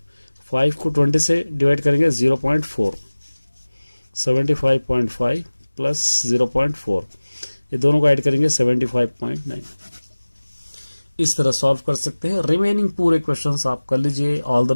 5 को 20 से डिवाइड करेंगे 0.4, 75.5 प्लस 0.4, ये दोनों को ऐड करेंगे 75.9। इस तरह सॉल्व कर सकते हैं। रिमेनिंग पूरे क्वेश्चंस आप कर लीजिए। ऑल द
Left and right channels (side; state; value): both; inverted; correlation -1.00